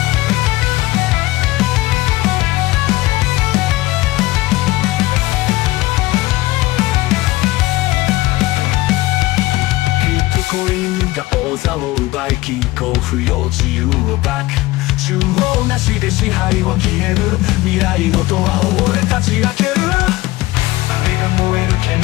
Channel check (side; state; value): right; quieter; 19.2 dB